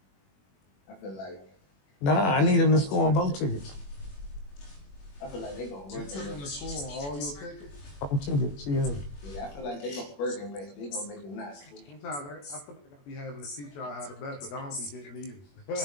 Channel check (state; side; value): late; right; 21 ms